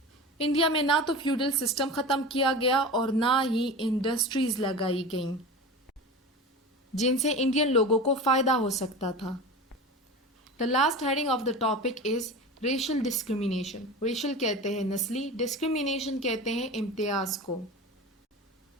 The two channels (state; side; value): normal; both; correlation 0.31